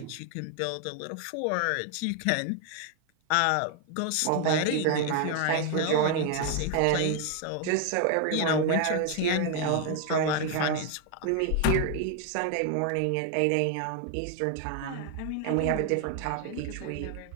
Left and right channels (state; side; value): different; both; correlation 0.01